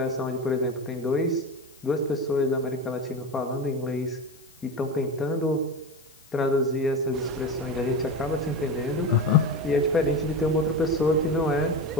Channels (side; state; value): left; noise; hiss, 26 dB below the sound